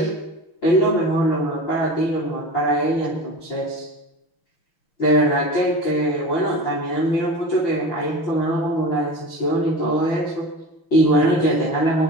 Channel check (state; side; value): late; right; 6.3 ms